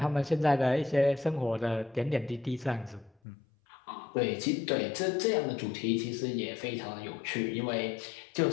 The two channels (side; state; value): right; drops out; at 3.1 s